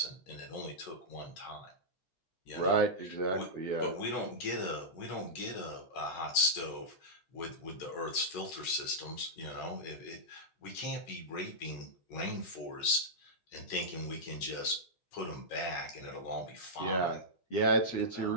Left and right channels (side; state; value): right; late; 12 ms